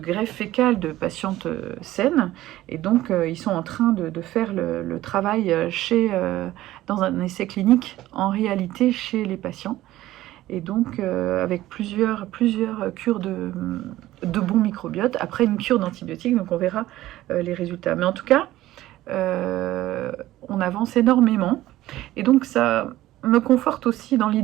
fécale de patientes saines, et donc ils sont en train de faire le travail dans un essai clinique en réalité chez les patients. Et donc avec plusieurs cures de bons microbiotes, après une cure d'antibiotiques, donc on verra les résultats. Mais en tout cas, on avance énormément, et donc ça me conforte aussi dans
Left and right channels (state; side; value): quieter; left; 15.5 dB